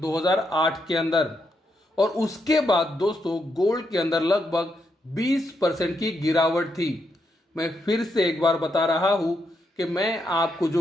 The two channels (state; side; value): normal; both; correlation 0.80